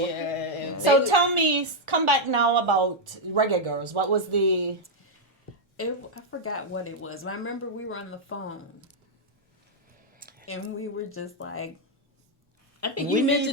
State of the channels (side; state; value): both; normal; correlation -0.01